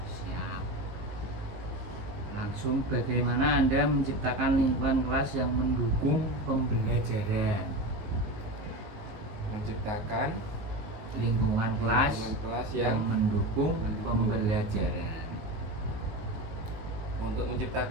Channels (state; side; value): late; left; 19 ms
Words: Siap. Langsung, bagaimana Anda menciptakan lingkungan kelas yang mendukung pembelajaran? Menciptakan Lingkungan kelas yang mendukung mendukung. pembelajaran. Untuk